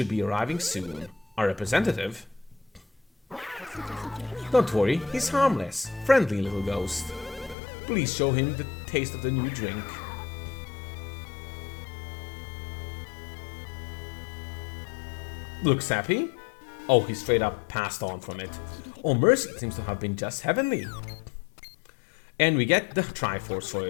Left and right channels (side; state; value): right; drops out; at 7.6 s